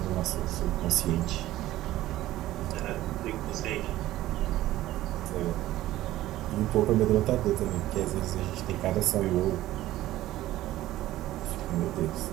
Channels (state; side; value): quieter; left; 15.2 dB